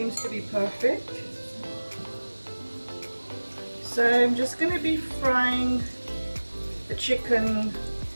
to be perfect. So I'm just going to be frying the chicken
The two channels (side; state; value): both; inverted; correlation -1.00